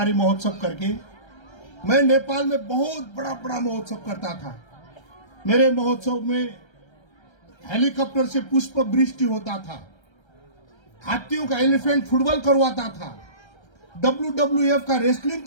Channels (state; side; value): late; right; 1.3 ms